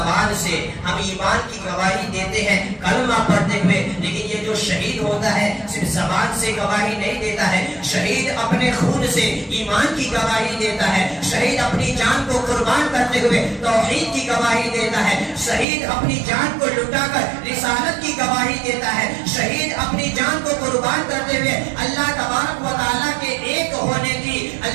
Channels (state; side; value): drops out; left; at 15.7 s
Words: سے، ہم ایمان کی گواہی دیتے ہیں کلمہ پڑھتے ہوئے، لیکن یہ جو شہید ہوتا ہے صرف زبان سے گواہی نہیں دیتا ہے، شہید اپنے خون سے ایمان کی گواہی دیتا ہے، شہید اپنی جان کو قربان کرتے ہوئے توحید کی گواہی دیتا ہے، شہید اپنی جان کو لٹا کر رسالت کی گواہی دیتا ہے، شہید اپنی جان کو قربان کرتے ہوئے اللہ تبارک و تعالیٰ کے ایک ہونے کی،